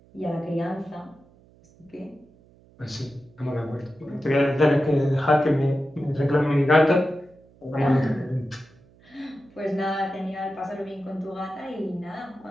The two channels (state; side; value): noise; right; hum, 28 dB below the sound